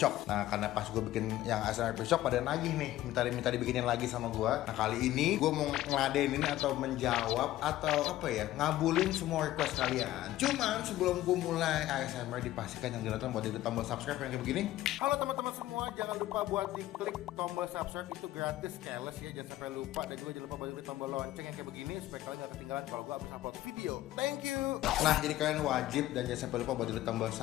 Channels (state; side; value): quieter; right; 14.9 dB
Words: Nah karena pas gue bikin yang ASMR piscok pada nagih nih, minta dibikinin lagi sama gue. Nah kali ini gue mau ngeladenin atau menjawab atau apa ya, ngabulin semua request kalian. Cuman sebelum gue mulai ASMR, dipastikan yang ditonton buat diklik tombol subscribe yang kayak begini. Halo teman-teman semua, jangan lupa buat diklik tombol subscribe, itu gratis, keles ya, jangan sampai lupa. Dan juga jangan lupa buat diklik tombol lonceng yang kayak begini supaya kalian gak ketinggalan kalau gue habis upload video. Thank you. Nah jadi kalian wajib dan jangan sampai lupa buat klik tombol